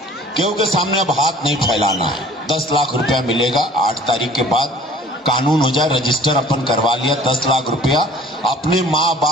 क्योंकि सामने अब हाथ नहीं फैलाना है। 10 लाख रुपया मिलेगा 8 तारीख के बाद, कानून हो जाए, रजिस्टर अपन करवा लिया। 10 लाख रुपया अपने माँ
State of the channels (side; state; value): both; normal; correlation 0.49